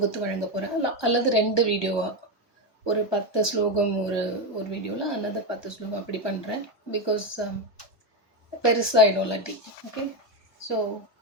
வழங்க போகிறேன், அல்லது 2 வீடியோவாக, ஒரு 10 ஸ்லோகம் ஒரு வீடியோவில், அல்லது 10 ஸ்லோகம் அப்படி பண்ணுறேன். பிகாஸ் பெருசாகிடும் இல்லாட்டி. ஓகே, ஸோ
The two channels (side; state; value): right; late; 1.2 ms